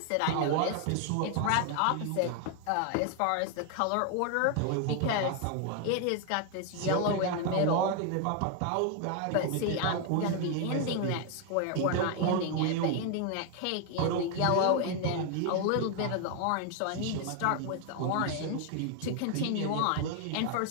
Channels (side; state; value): both; different; correlation 0.00